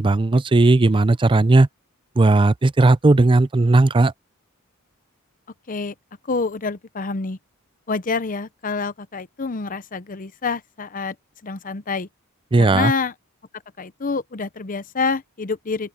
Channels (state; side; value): normal; both; correlation 0.74